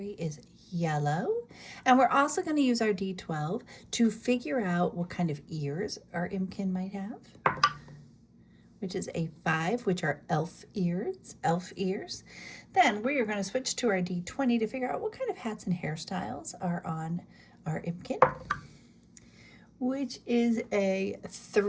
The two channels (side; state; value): both; identical; correlation 1.00